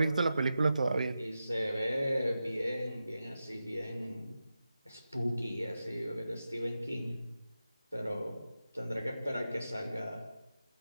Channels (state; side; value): inverted; both; correlation -0.91